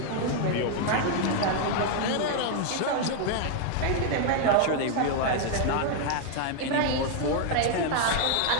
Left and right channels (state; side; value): different; both; correlation 0.00